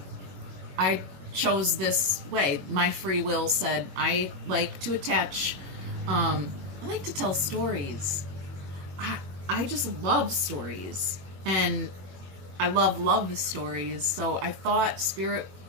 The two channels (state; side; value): late; left; 21 ms